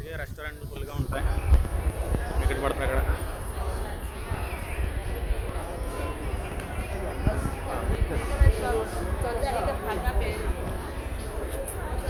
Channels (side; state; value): both; identical; correlation 1.00